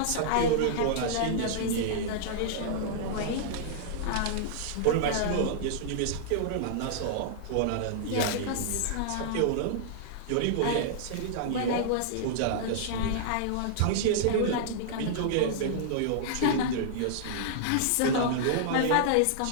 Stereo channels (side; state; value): both; different; correlation -0.01